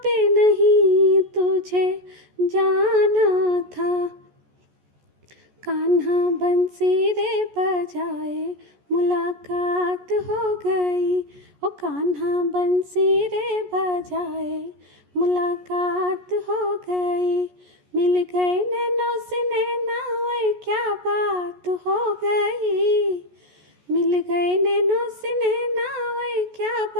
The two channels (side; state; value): left; late; 14 ms